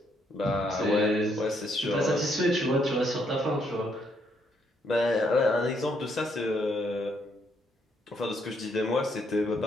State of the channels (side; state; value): both; normal; correlation 0.73